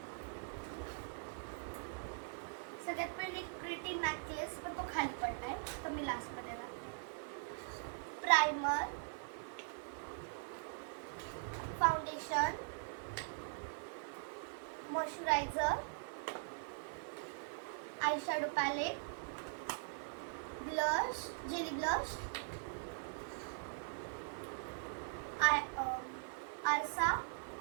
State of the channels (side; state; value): left; silent; digital silence